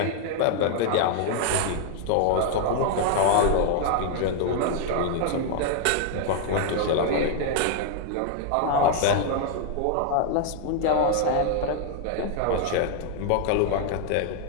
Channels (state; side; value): different; both; correlation 0.00